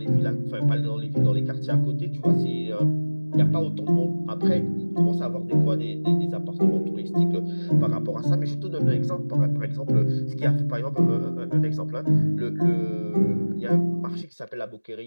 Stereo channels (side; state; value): both; inverted; correlation -1.00